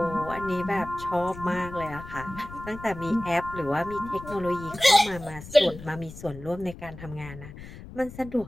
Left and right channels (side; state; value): left; noise; rumble, 14 dB below the sound